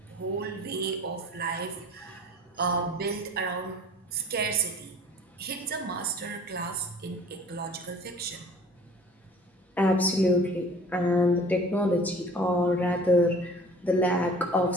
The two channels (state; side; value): normal; both; correlation 0.47